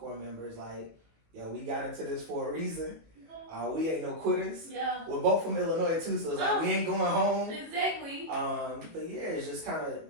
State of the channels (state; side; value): late; left; 19 ms